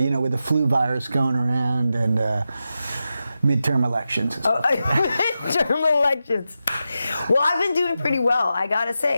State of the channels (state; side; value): inverted; both; correlation -0.90